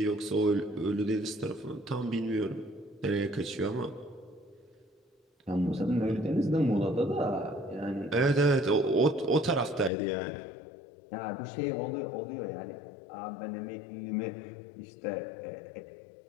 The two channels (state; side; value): drops out; right; at 9.9 s